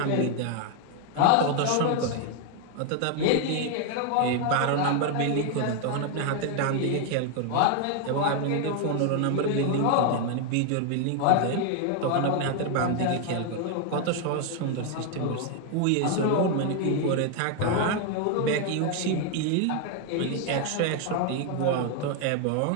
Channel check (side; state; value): both; different; correlation 0.00